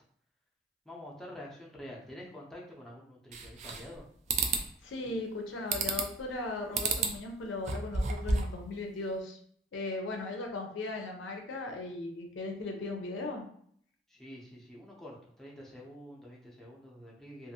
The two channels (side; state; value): both; normal; correlation 0.42